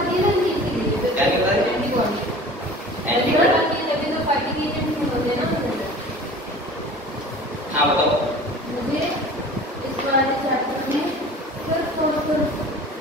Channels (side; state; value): both; normal; correlation 0.42